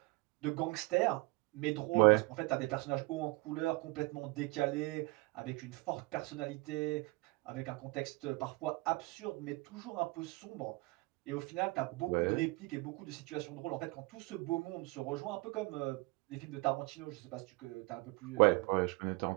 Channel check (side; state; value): left; quieter; 25.0 dB